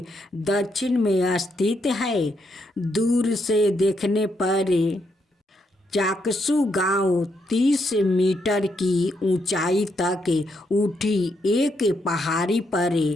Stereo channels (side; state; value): both; normal; correlation 0.78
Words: दक्षिण में स्थित है। दूर से देखने पर चाकसू गांव 30 मीटर की ऊंचाई तक उठी एक पहाड़ी पर